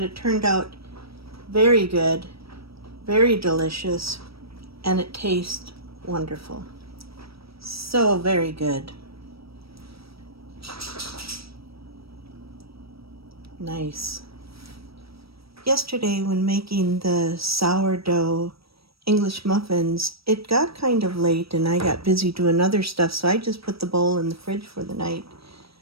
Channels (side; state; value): left; late; 0.76 ms